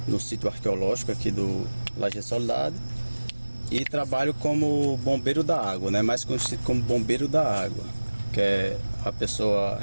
no sítio arqueológico aqui do Laje Soledade, e trabalho como bombeiro da água, né? Mais conhecido como bombeiro da água, que é a pessoa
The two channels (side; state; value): both; inverted; correlation -1.00